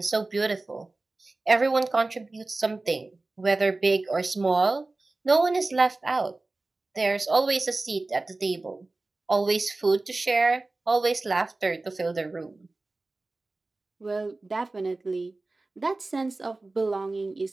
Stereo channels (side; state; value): left; quieter; 3.2 dB